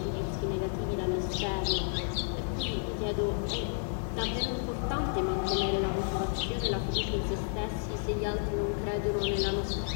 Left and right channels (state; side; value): silent; right; 57 dB below the other